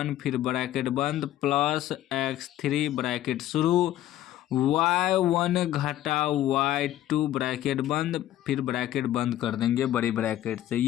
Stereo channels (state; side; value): quieter; right; 13.3 dB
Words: फिर ब्रैकेट बंद प्लस x3 ब्रैकेट शुरू, y1 घटा y2 ब्रैकेट बंद फिर ब्रैकेट बंद कर देंगे बड़ी ब्रैकेट से।